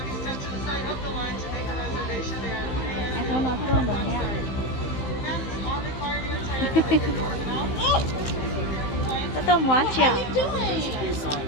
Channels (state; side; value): late; right; 15 ms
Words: em không nói tua nữa nha có tôm quá chả